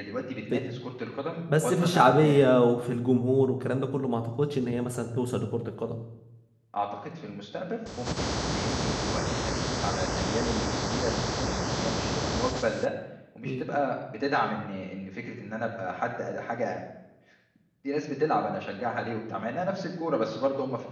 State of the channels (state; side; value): identical; both; correlation 1.00